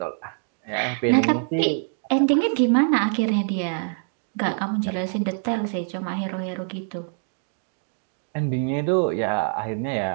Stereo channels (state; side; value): silent; left; 62 dB below the other